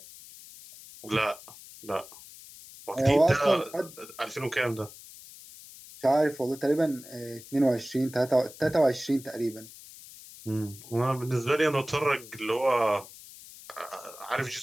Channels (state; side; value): noise; left; hiss, 18 dB below the sound